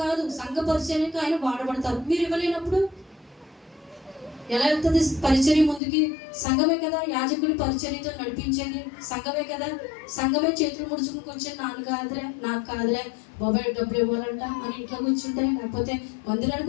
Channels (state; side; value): drops out; right; at 5.8 s